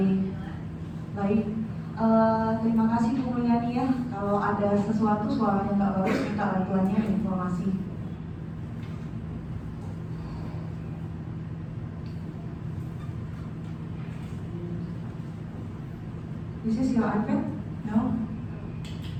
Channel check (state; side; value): identical; both; correlation 1.00